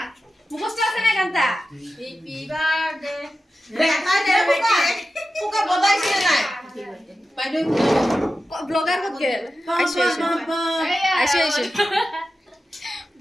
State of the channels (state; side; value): normal; both; correlation 0.93